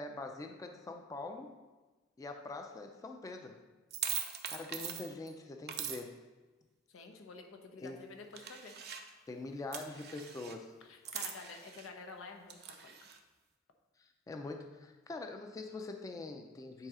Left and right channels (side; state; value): both; normal; correlation 0.34